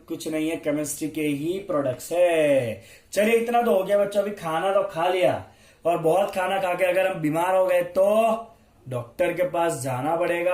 कुछ नहीं है, केमिस्ट्री के ही प्रोडक्ट्स है। चलिए इतना तो हो गया बच्चों। अभी खाना तो खा लिया, और बहुत खाना खा के अगर हम बीमार हो गए तो डॉक्टर के पास जाना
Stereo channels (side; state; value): both; identical; correlation 1.00